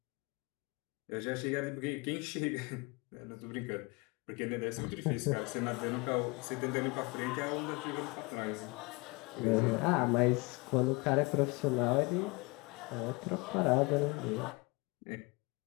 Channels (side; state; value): right; quieter; 27.1 dB